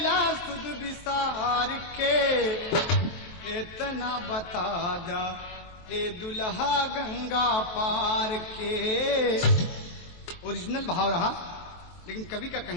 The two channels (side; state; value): right; late; 23 ms